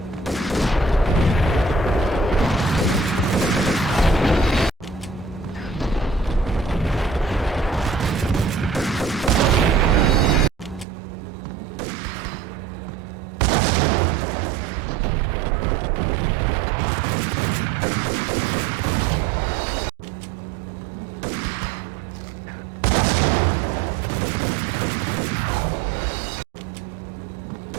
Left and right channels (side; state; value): left; drops out; at 10.9 s